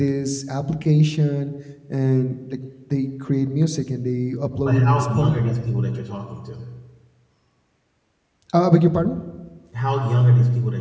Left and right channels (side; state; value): both; identical; correlation 1.00